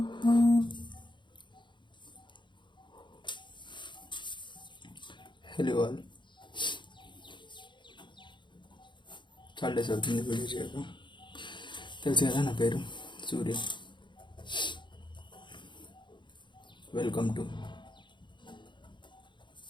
Hello all. చాలా days అవుతుంది video చేయక. తెలుసు కదా నా పేరు Surya. Welcome to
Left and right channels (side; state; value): right; late; 0.23 ms